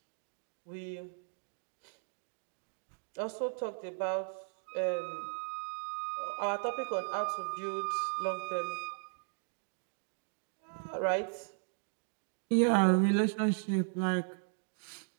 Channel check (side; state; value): left; silent; digital silence